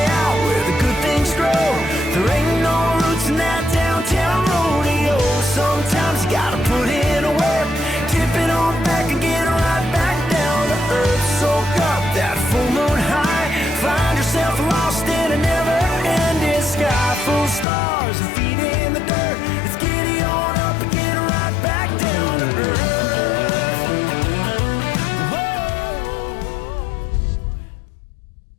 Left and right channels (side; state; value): right; drops out; at 17.7 s